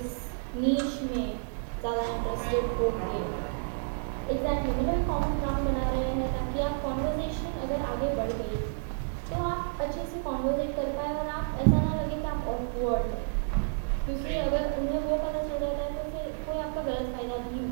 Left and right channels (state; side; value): silent; left; digital silence